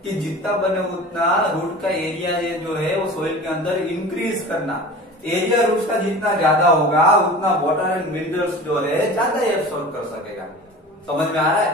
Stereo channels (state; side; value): normal; both; correlation 0.37